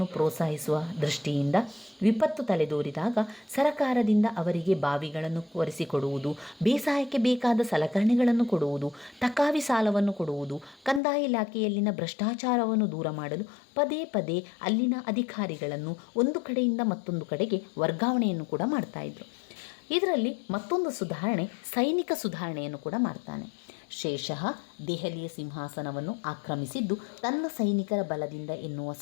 ಪ್ರೋತ್ಸಾಹಿಸುವ ದೃಷ್ಟಿಯಿಂದ ವಿಪತ್ತು ತಲೆದೋರಿದಾಗ ಸರಕಾರದಿಂದ ಅವರಿಗೆ ಬಾವಿಗಳನ್ನು ಒರೆಸಿಕೊಡುವುದು, ಬೇಸಾಯಕ್ಕೆ ಬೇಕಾದ ಸಲಕರಣೆಗಳನ್ನು ಕೊಡುವುದು, ತಕಾವಿ ಸಾಲವನ್ನು ಕೊಡುವುದು, ಕಂದಾಯ ಇಲಾಖೆಯಲ್ಲಿನ ಭ್ರಷ್ಟಾಚಾರವನ್ನು ದೂರ ಮಾಡಲು ಪದೇ ಪದೇ ಅಲ್ಲಿನ ಅಧಿಕಾರಿಗಳನ್ನು ಒಂದು ಕಡೆಯಿಂದ ಮತ್ತೊಂದು ಕಡೆಗೆ ವರ್ಗಾವಣೆಯನ್ನು ಕೂಡ ಮಾಡ್ತಾಯಿದ್ರು. ಇದರಲ್ಲಿ ಮತ್ತೊಂದು ಸುಧಾರಣೆ, ಸೈನಿಕ ಸುಧಾರಣೆಯನ್ನು ಕೂಡ ಮಾಡ್ತಾನೆ. ಶೇಷಃ ದೆಹಲಿಯ ಸಿಂಹಾಸನವನ್ನು ಆಕ್ರಮಿಸಿದ್ದು ತನ್ನ ಸೈನಿಕರ ಬಲದಿಂದ ಎನ್ನುವ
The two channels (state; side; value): drops out; right; at 11.0 s